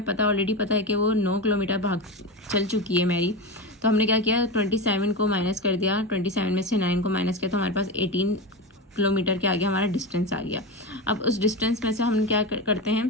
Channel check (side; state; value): both; normal; correlation 0.20